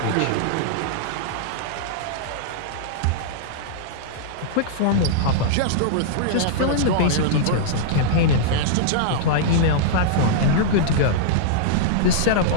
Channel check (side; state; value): both; different; correlation -0.02